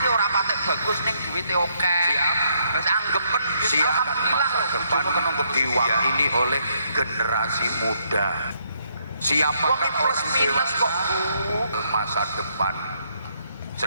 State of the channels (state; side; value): inverted; both; correlation -0.72